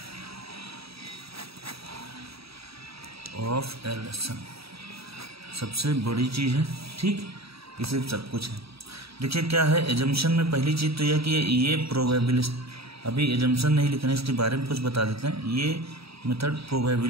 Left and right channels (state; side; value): late; left; 0.77 ms